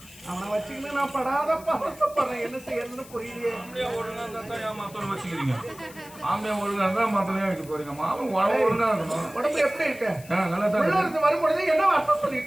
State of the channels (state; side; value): noise; left; hiss, 20 dB below the sound